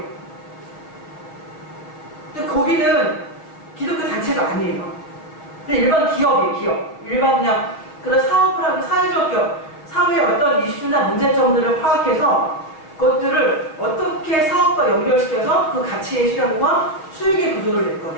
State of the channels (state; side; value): late; right; 6.5 ms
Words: 근데 거기는 기독교 단체가 아니에요. 근데 일반 기업이에요. 기업, 일반 그냥 그런 사업을 하고 사회적 기업, 사회의 어떤 이슈나 문제점들을 파악해서 그것들을 어떻게 사업과 연결시켜서 그 가치의 실현과 수익의 구조를 낼